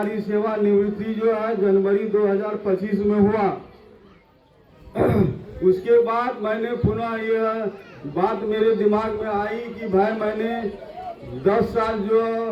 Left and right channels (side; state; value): both; identical; correlation 1.00